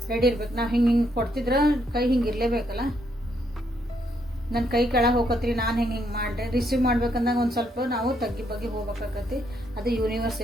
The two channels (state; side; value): normal; both; correlation 0.74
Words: ರೆಡಿ ಇರ್ಬೇಕು. ನಾವು ಹಿಂಗೆ ಕೊಡ್ತಿದ್ರೆ ಕೈ ಹಿಂಗೆ ಇರಲೇಬೇಕಲ್ಲ. ನನ್ನ ಕೈ ಕೆಳಗೆ ಹೋಗತ್ರಿ, ನಾನು ಹಿಂಗೆ ಮಾಡಿದೆ, ರಿಸೀವ್ ಮಾಡ್ಬೇಕಂದಾಗ ಒಂದು ಸ್ವಲ್ಪ ನಾವು ತಗ್ಗಿ ಬಗ್ಗೆ ಹೋಗ್ಬೇಕಾಗತ್ತಿ. ಅದು ಯೂನಿವರ್ಸ್